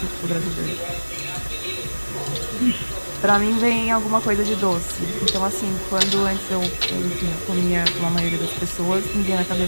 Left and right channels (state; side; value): inverted; both; correlation -1.00